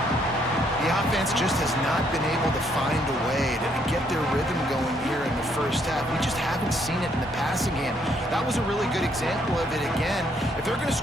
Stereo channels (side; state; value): both; normal; correlation 0.70